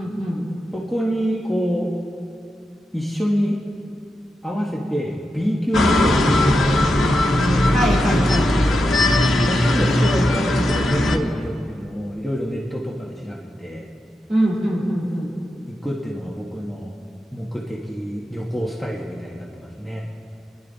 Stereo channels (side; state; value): both; normal; correlation 0.88